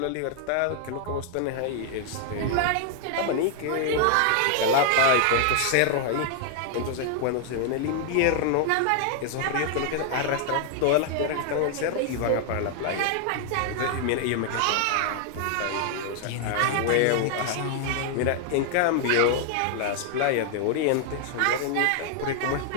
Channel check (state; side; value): different; both; correlation 0.00